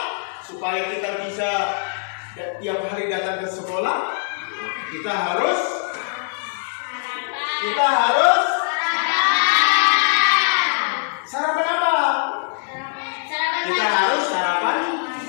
supaya kita bisa tiap hari datang ke sekolah, kita harus sarapan apa? Kita harus sarapan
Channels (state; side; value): silent; right; digital silence